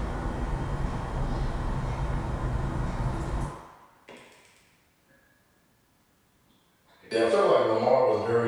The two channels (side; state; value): both; identical; correlation 1.00